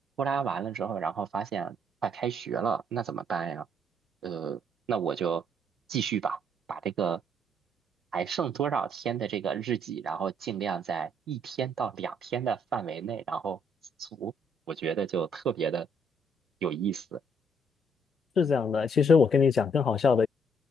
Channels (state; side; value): normal; both; correlation 0.68